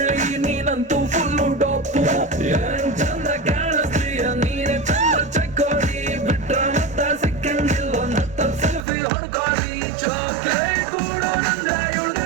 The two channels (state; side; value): drops out; left; at 8.8 s